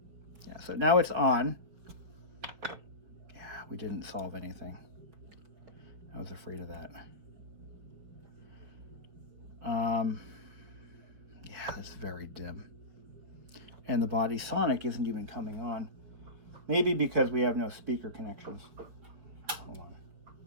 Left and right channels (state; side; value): late; left; 5.1 ms